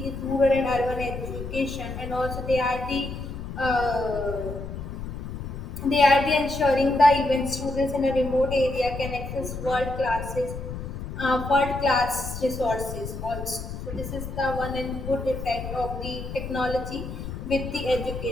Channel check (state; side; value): noise; left; rumble, 8 dB below the sound